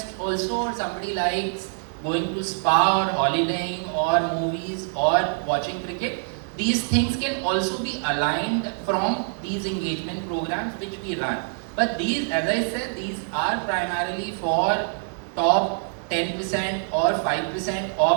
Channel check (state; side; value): silent; left; 62 dB below the other